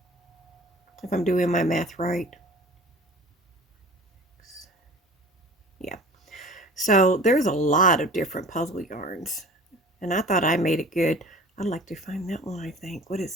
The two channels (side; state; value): both; normal; correlation 0.42